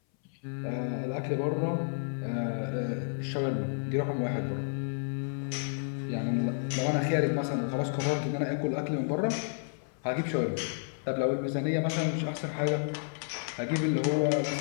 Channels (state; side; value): silent; right; 57 dB below the other